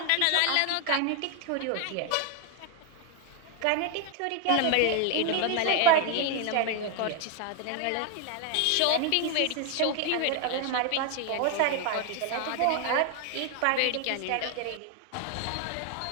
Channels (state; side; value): different; both; correlation 0.01